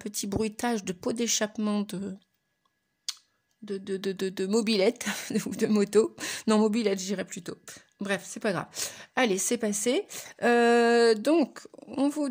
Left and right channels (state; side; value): identical; both; correlation 1.00